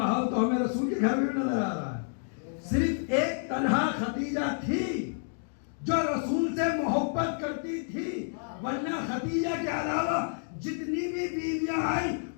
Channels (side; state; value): right; silent; digital silence